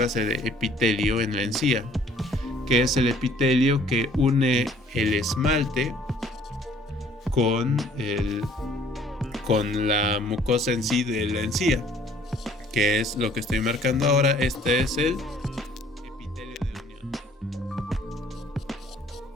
de epitelio en la encía, que es el epitelio que une el esmalte con la mucosa en sí de la encía, que es lo que estoy marcando ahora. Este es el epitelio de unión.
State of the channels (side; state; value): both; normal; correlation 0.58